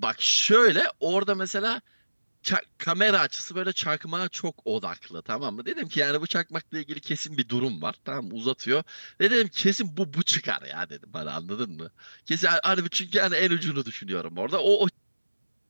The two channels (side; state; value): both; inverted; correlation -1.00